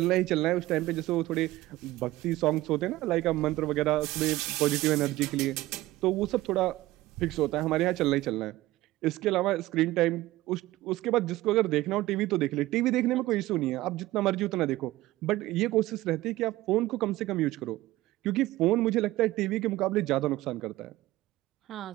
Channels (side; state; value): left; quieter; 17.3 dB